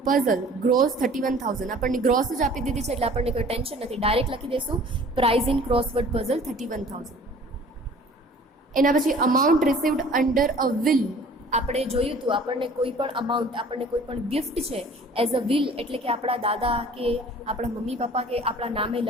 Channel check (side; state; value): both; normal; correlation 0.49